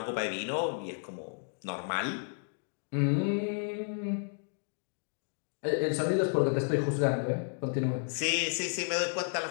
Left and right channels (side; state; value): right; silent; 56 dB below the other